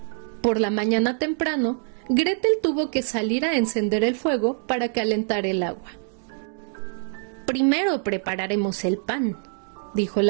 Por la mañana temprano, Gretel tuvo que salir a encender el fuego para calentar el agua. «Primero prepararemos el pan», dijo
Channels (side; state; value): left; silent; 56 dB below the other